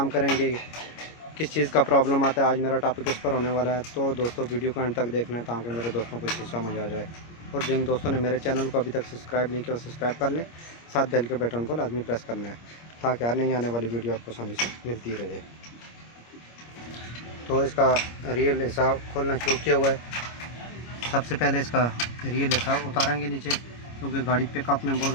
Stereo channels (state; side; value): late; right; 25 ms